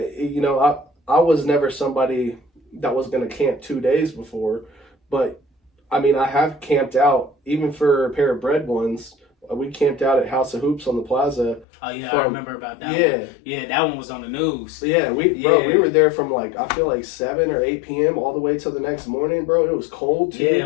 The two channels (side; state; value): right; drops out; at 11.7 s